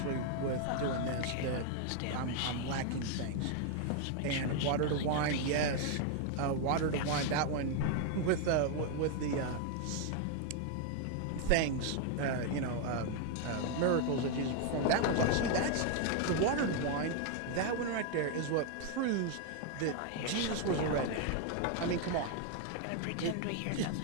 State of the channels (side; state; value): both; different; correlation 0.00